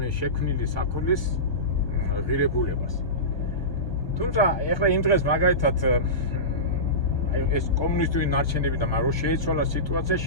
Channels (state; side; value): late; right; 1.2 ms